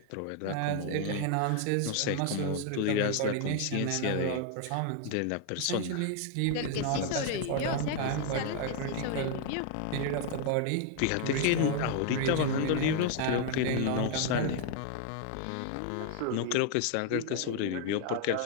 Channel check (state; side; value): different; both; correlation 0.00